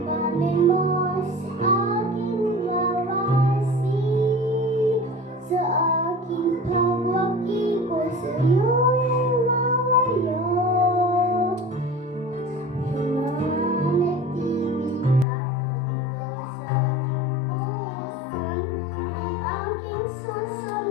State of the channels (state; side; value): drops out; right; at 15.2 s